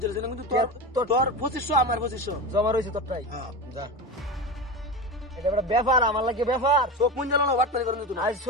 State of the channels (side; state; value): both; normal; correlation 0.24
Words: না কিন্তু তোর 2500 আমার 2500 জমা রইছে তোরটাই হ্যাঁ যা এটা বড় ব্যাপার আমার লাগে ব্যাপার চোখ মুঞ্জালো না ওয়াট করে তুই আজ